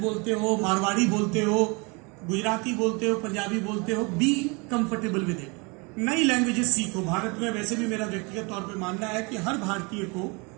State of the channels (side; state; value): left; quieter; 29.7 dB